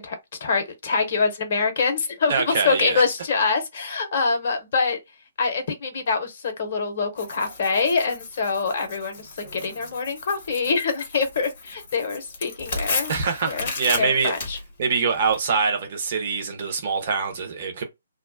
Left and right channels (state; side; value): inverted; both; correlation -0.65